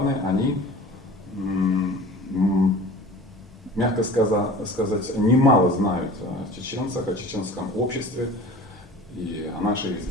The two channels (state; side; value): normal; both; correlation 0.40